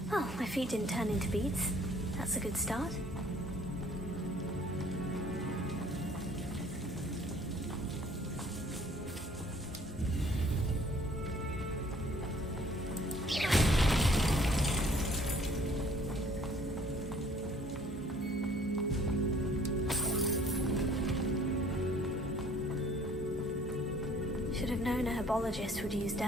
Oh, my feet didn't turn into beads. That's a good start. Should have known a herbologist would use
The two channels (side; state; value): both; normal; correlation 0.57